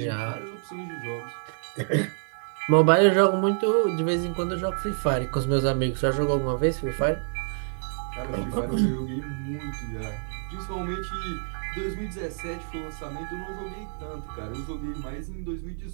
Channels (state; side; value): silent; left; 60 dB below the other